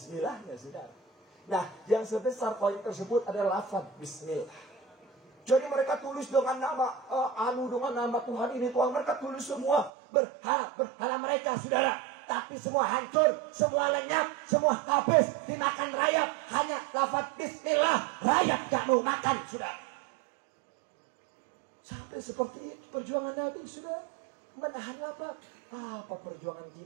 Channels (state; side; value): drops out; left; at 9.9 s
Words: sudah. Nah, yang sebesar koin tersebut adalah lafaz bismillah. Jadi mereka tulis dengan nama dengan nama Tuhan ini, Tuhan. Mereka tulis semua berhala mereka saudara. Tapi semua hancur, semua lenyap, semua habis dimakan rakyat. Hanya lafaz bismillah, rakyat gak mau makan sudah. Sampai seperti itu perjuangan Nabi sudah. Menahan lapar. Apa perjuangan